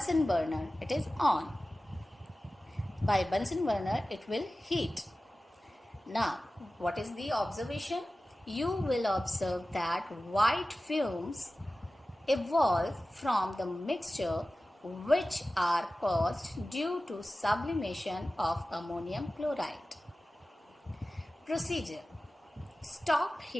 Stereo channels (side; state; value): both; normal; correlation 0.96